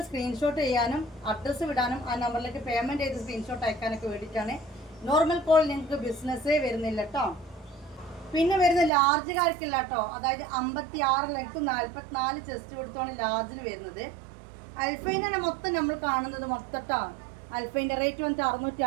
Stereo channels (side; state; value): left; drops out; at 8.9 s